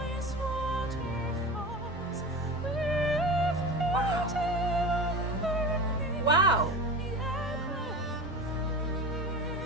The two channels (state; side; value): normal; both; correlation 0.30